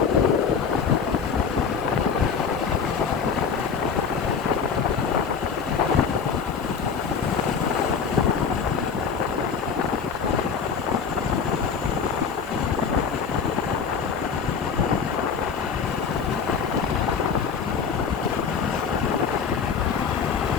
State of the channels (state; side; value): quieter; right; 6.1 dB